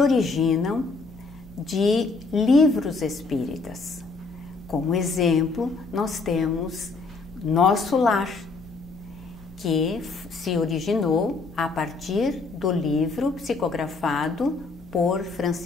de livros espíritas. Como exemplo, nós temos Nosso Lar, que se originou a partir do livro psicografado por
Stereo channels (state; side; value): quieter; right; 4.0 dB